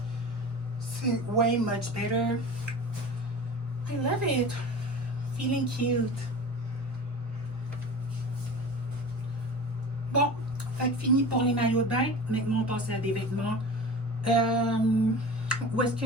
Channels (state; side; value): normal; both; correlation 0.34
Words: c'est way much better. I love it. Feeling cute. Bon, fait que fini pour les maillots de bain. Maintenant, on passe à des vêtements. Où est-ce